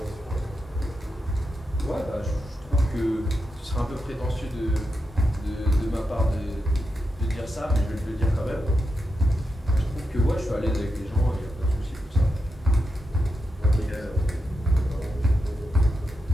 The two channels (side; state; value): both; normal; correlation 0.86